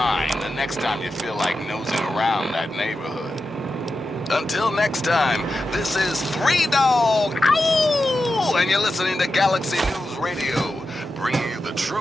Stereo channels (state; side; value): normal; both; correlation 0.90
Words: the next time you feel like nosing around that neighborhood. Until next time, this is 3 Dog, ow! And you're listening to Galaxy News Radio, bringing you the